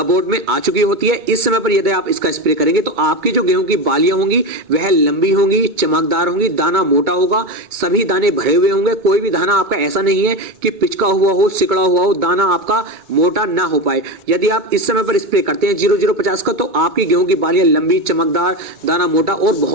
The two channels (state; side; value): late; left; 2.2 ms